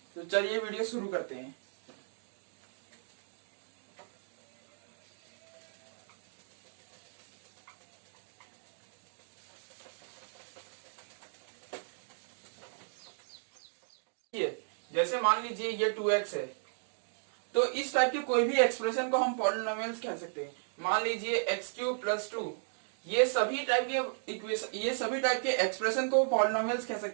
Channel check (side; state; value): left; silent; digital silence